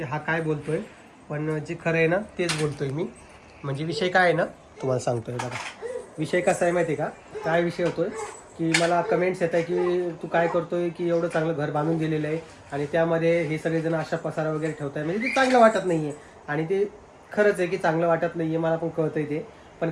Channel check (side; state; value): both; identical; correlation 1.00